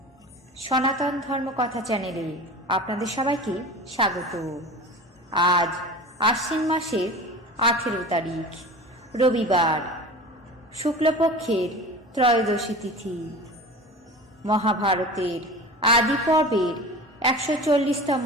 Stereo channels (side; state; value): both; normal; correlation 0.34